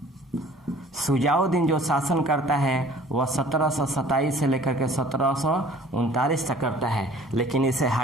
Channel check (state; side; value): normal; both; correlation 0.51